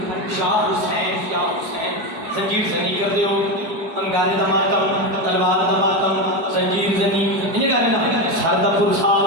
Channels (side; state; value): left; late; 4.8 ms